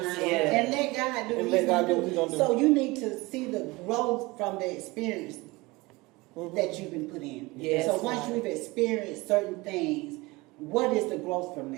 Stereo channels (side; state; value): left; quieter; 22.9 dB